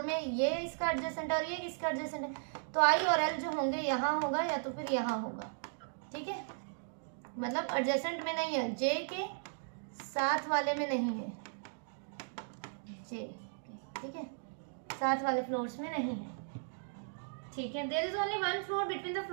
में ये इसका एडजेसेंट और ये इसका एडजेसेंट है, तो I और L जो होंगे यहाँ होगा या तो फिर यहाँ होगा, ठीक है, मतलब एडजेसेंट में नहीं है, J के साथ वाले में नहीं है, J ठीक है, साथ वाले फ्लोर्स में नहीं है, ठीक है। There is only one floor between the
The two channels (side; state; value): left; silent; digital silence